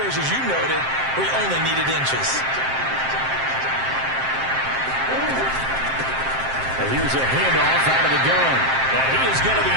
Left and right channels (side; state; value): left; late; 7.6 ms